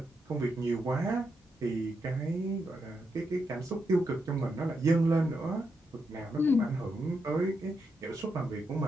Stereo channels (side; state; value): both; normal; correlation 0.82